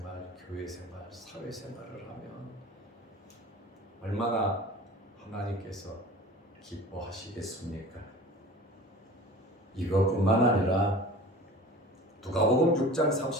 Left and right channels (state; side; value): normal; both; correlation 0.40